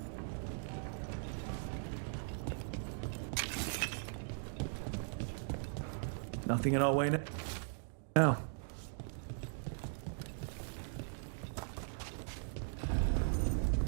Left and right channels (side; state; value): left; silent; digital silence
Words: Nothing in our way now.